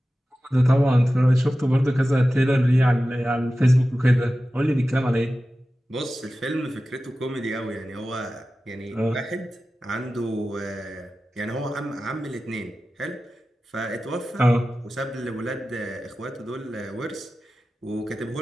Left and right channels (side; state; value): both; normal; correlation 0.94